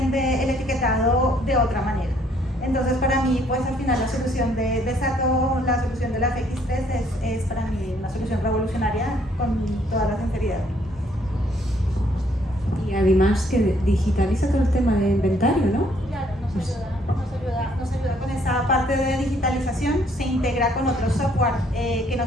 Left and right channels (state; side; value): normal; both; correlation 0.65